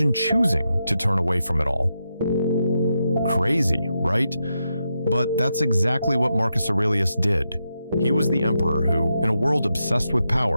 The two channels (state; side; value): inverted; both; correlation -0.85